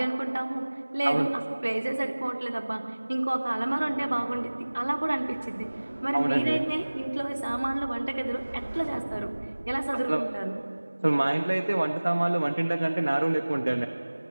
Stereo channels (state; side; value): inverted; both; correlation -1.00